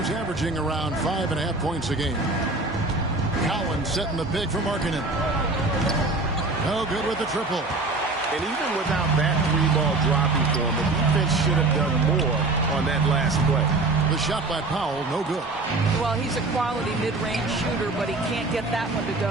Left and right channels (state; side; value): quieter; left; 3.2 dB